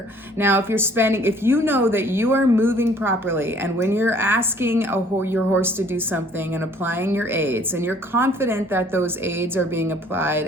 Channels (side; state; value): both; normal; correlation 0.57